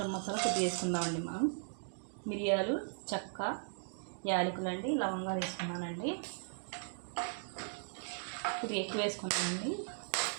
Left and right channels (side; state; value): left; silent; digital silence